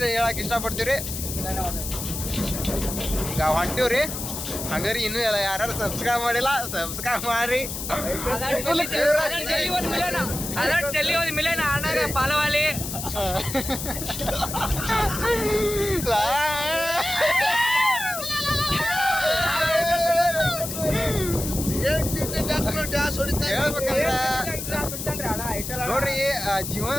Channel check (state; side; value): noise; left; hiss, 6 dB below the sound